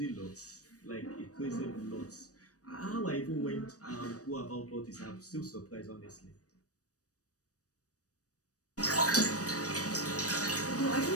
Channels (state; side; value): late; right; 0.66 ms